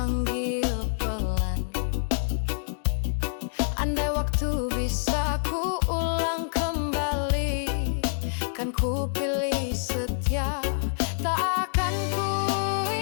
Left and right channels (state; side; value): silent; right; digital silence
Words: pelan. Andai waktu bisa ku ulang kembali, kan ku pilih setia, tak akan ku